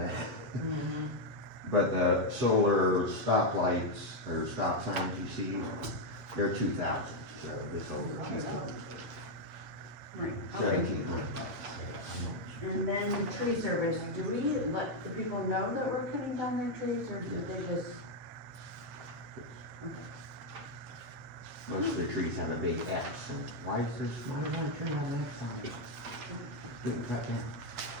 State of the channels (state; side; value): late; left; 8.0 ms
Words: Mm-hmm. But the solar stop lights, or stop signs you see, they're 2,000, so this will be cheaper, Right, okay. $1,700. And then the tree service, do we let the people know that we're cutting down their trees, or do they just? Okay. Most of the trees have a big X, and why does one tree have an X on it? Didn't cut down.